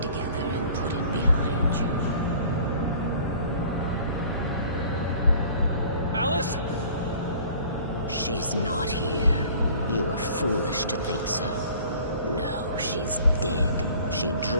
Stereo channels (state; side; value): inverted; both; correlation -0.49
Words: together and put it behind you. Alice? She's not here. You were foolish to think so. No, she's dead. She